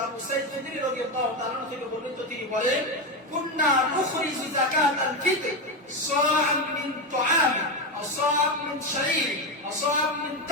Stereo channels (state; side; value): normal; both; correlation 0.12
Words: আবু সাঈদ খুদরি রাদিয়াল্লাহু তাআলা আনহু থেকে বর্ণিত, তিনি বলেন, কুননা নুখরিজু যাকাতাল ফিতর সাআম মিন তুআম আও সাআম মিন শাঈর আও সাআম মিন